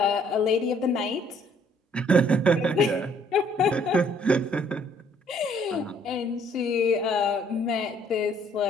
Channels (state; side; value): normal; both; correlation 0.63